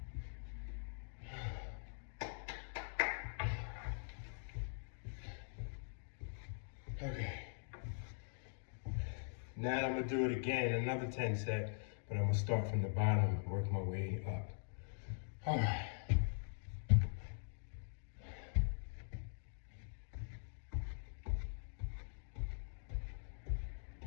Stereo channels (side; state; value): right; silent; digital silence